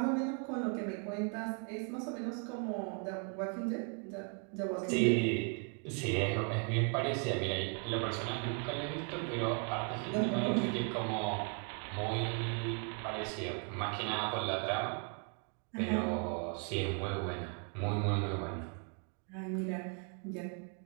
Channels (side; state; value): left; quieter; 38.2 dB